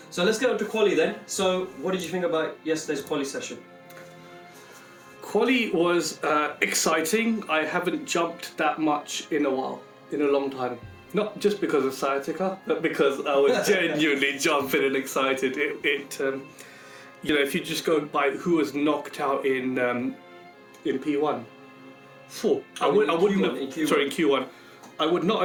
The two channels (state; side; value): identical; both; correlation 1.00